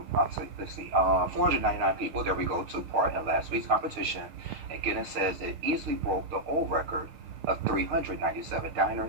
people, there we go, took part in last week's competition. And Guinness says it easily broke the old record of 397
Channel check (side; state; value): left; late; 6.5 ms